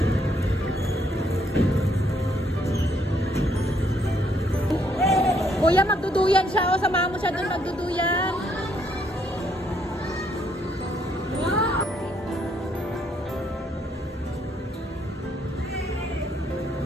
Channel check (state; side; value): normal; both; correlation 0.71